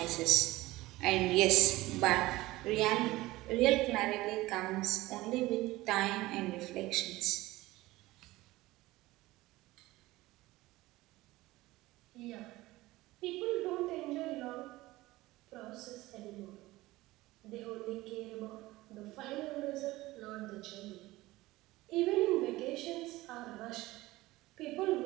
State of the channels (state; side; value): quieter; left; 18.7 dB